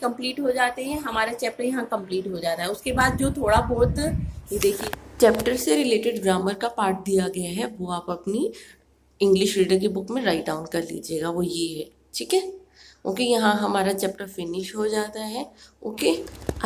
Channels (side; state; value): both; identical; correlation 1.00